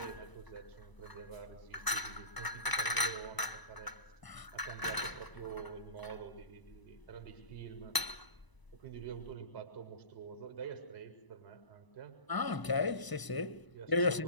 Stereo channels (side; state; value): right; late; 1.0 ms